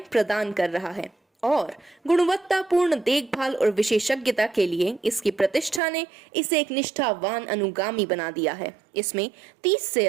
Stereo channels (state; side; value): drops out; left; at 5.8 s